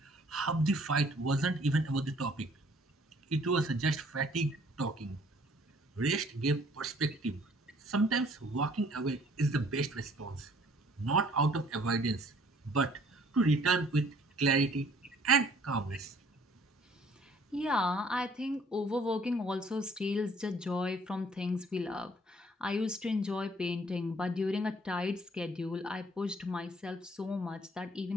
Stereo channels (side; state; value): both; normal; correlation 0.58